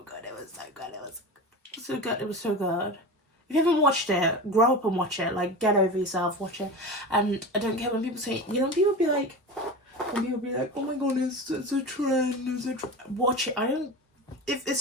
good. It was so good. If you haven't watched it, grow up and watch it. Like, get over yourself, watch it. And I don't care when people say, you know, people be like, oh my god, it's a trend, watch it. If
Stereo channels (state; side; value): normal; both; correlation 0.28